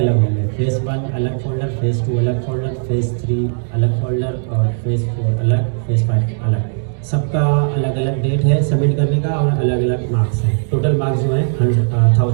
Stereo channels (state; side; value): silent; left; digital silence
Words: होंगे, फेज़ 1 अलग फोल्डर, फेज़ 2 अलग फोल्डर, फेज़ 3 अलग फोल्डर, और फेज़ 4 अलग, फेज़ 5 अलग। सबका अलग अलग डेट है सबमिट करने का, और अलग अलग मार्क्स हैं। टोटल मार्क्स जो है